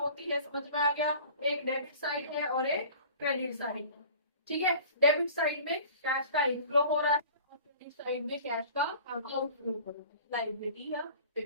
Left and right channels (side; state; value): both; inverted; correlation -0.44